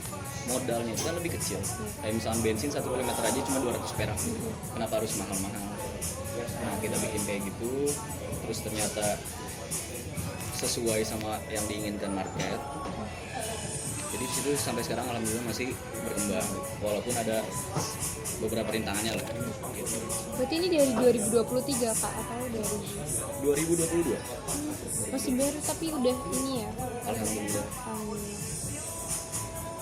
modalnya itu kan lebih kecil. Kayak misalnya bensin 1 km aja cuma 200 perak, kenapa harus mahal-mahal? Nah, kita bikin kayak gitu, terus ternyata sesuai sama yang diinginkan market. Jadi di situ sampai sekarang alhamdulillah masih berkembang, walaupun ada beberapa rintangannya lah. Gitu. Berarti ini dari 2023 Kak atau dari 2022? Masih baru tapi udah ini ya. Alhamdulillah.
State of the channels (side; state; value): both; identical; correlation 1.00